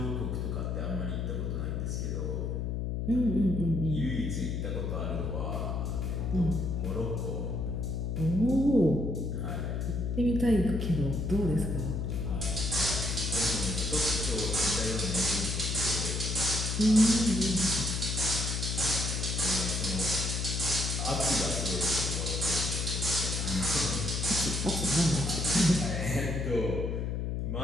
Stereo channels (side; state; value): left; noise; hum, 1 dB below the sound